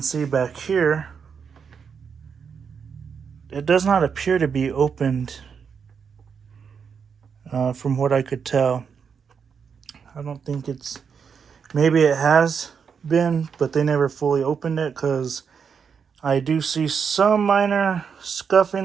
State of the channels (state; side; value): quieter; left; 6.5 dB